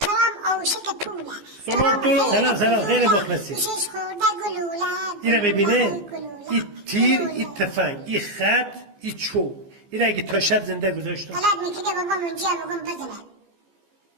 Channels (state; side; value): late; left; 15 ms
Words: ترام اوشک پوله. سلام خیلی مخلصی. شش خورده گلوله. اینا ببینه این تیر این تفنگ این خط این چوب این اگه تا شب زنده گذاشتم غلط میکرده بابام اونجا بگم بزنه.